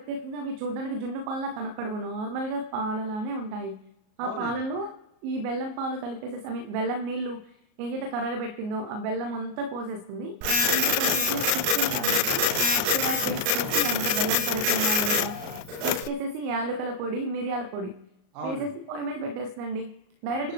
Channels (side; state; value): left; late; 38 ms